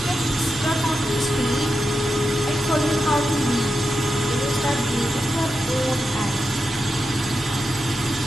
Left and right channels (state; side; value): normal; both; correlation 0.88